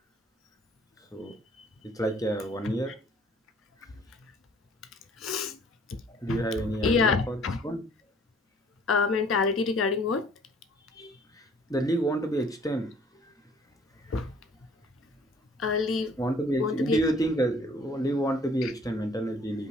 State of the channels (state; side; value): normal; both; correlation 0.56